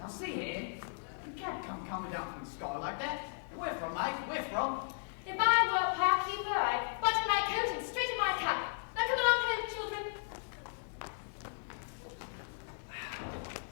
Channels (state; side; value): silent; right; 54 dB below the other